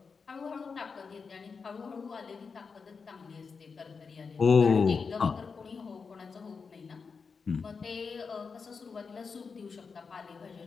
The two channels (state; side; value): quieter; right; 5.2 dB